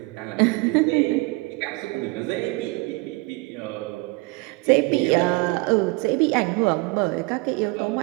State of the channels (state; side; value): quieter; left; 25.0 dB